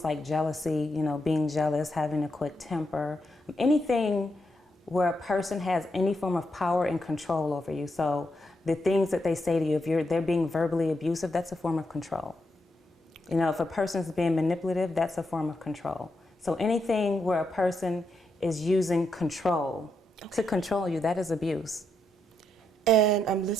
like jealousy, you know, being jealous, having a quick temper, anything where a person has any form of power and control over you. So the things that they say to you, if they're being verbally abusive, that's a form of control. You know, if a person's being manipulative, that's a form of control. So anything where a person is using control to control you, that is abuse. And I'm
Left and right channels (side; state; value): both; normal; correlation 0.82